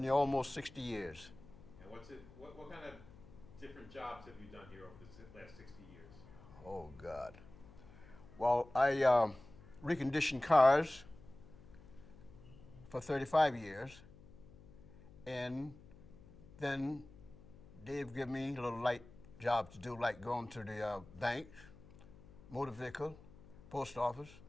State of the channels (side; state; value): left; noise; hum, 21 dB below the sound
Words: here almost 60 years. And what kind of different jobs have you done here over the last 60 years? Oh, God. Well, I reconditioned cars for 35 years. And then they've given me a little light job to do, like going to the bank, motor vehicle, post office,